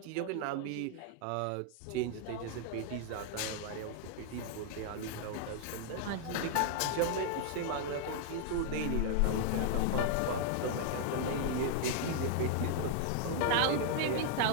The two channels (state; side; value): different; both; correlation -0.01